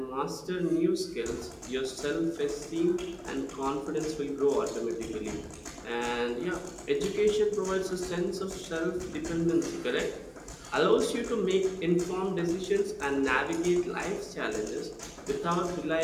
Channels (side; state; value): both; identical; correlation 1.00